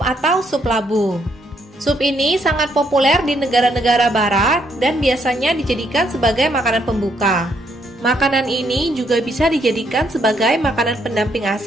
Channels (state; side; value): normal; both; correlation 0.73